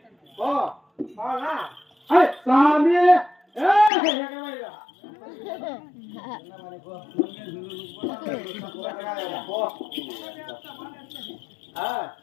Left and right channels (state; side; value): drops out; right; at 3.9 s